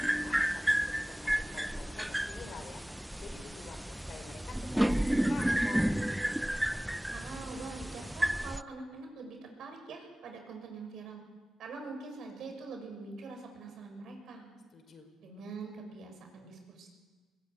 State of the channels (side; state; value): both; normal; correlation 0.97